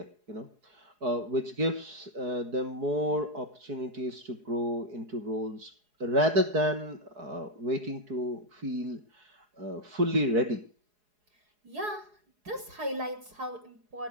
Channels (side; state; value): left; late; 4.8 ms